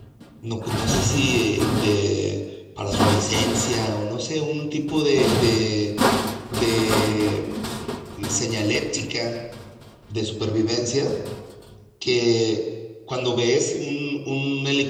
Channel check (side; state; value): both; identical; correlation 1.00